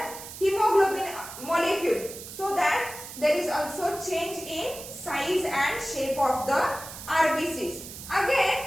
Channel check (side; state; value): right; noise; hiss, 12 dB below the sound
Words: hemoglobin molecule, so that there is also change in size and shape of the RBCs.